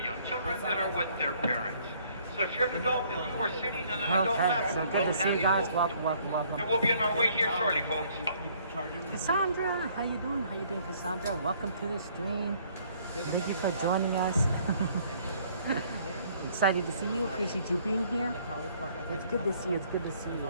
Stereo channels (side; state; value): both; inverted; correlation -0.62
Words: young children that are with their parents. So if you're an adult and you are sitting on an adult lap, so good to see you guys. Welcome, welcome, welcome. And we'll be on our way here shortly, folks. Cassandra, how you doing? How you doing, Cassandra? Welcome to the stream. Thank you for joining us. Excited to see you. Appreciate you being here. It's good to see you. It's good to see